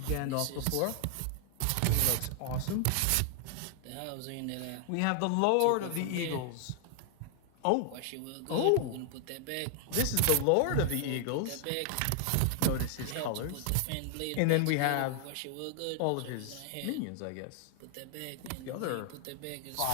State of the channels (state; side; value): different; both; correlation 0.00